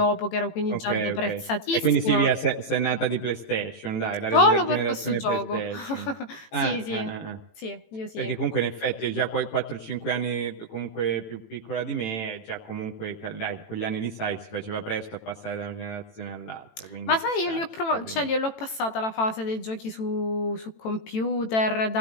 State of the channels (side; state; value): right; late; 18 ms